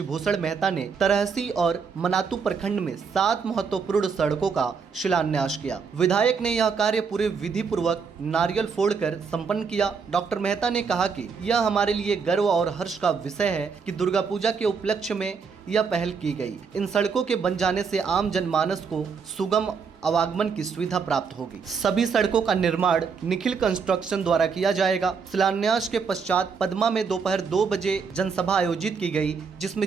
मेहता ने तरहसी और मनातू प्रखंड में 7 महत्वपूर्ण सड़कों का शिलान्यास किया। विधायक ने यह कार्य पूरे विधि पूर्वक नारियल फोड़कर संपन्न किया। डॉक्टर मेहता ने कहा कि यह हमारे लिए गर्व और हर्ष का विषय है कि दुर्गा पूजा के उपलक्ष्य में यह पहल की गई। इन सड़कों के बन जाने से आम जनमानस को सुगम आवागमन की सुविधा प्राप्त होगी। सभी सड़कों का निर्माण निखिल कंस्ट्रक्शन द्वारा किया जाएगा। शिलान्यास के पश्चात पदमा में दोपहर 2 बजे जनसभा आयोजित की गई,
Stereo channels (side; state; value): left; quieter; 5.7 dB